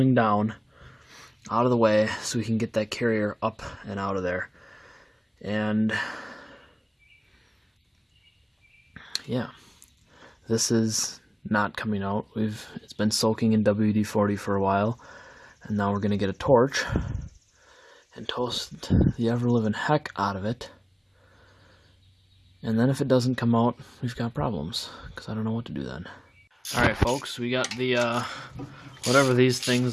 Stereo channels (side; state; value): both; identical; correlation 1.00